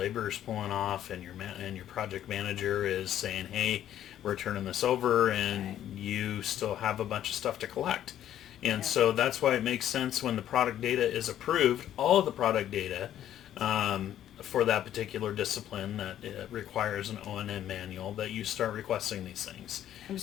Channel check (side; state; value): right; quieter; 11.4 dB